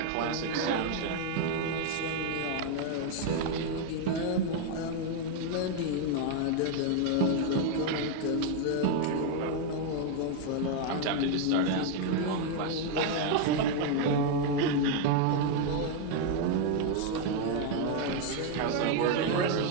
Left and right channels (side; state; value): both; different; correlation 0.00